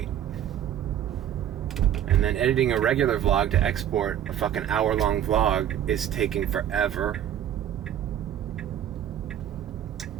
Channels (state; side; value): quieter; left; 10.4 dB